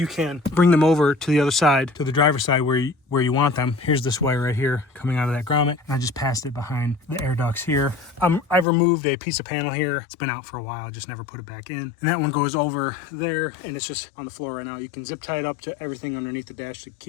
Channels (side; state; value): right; drops out; at 8.7 s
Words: can bring them over to the other side, to the driver's side where you want them. Here's this wire right here coming out of that grommet, and I just passed it behind the air ducts here. I've removed a piece of panel here. It's been out for a while, I just never put it back in. And that one goes over there, and it's just on the floor right now. You can zip tie it up to everything underneath the dash to